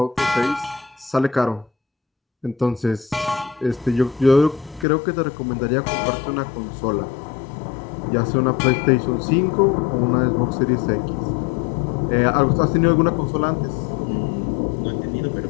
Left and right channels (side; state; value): right; drops out; at 4.9 s